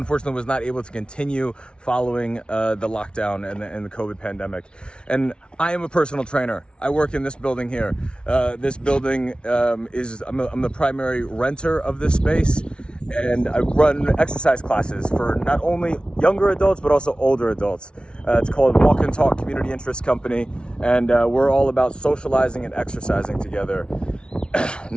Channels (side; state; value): right; late; 0.057 ms